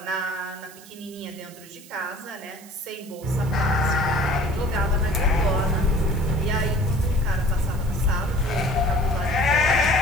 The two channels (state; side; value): noise; right; hiss, 20 dB below the sound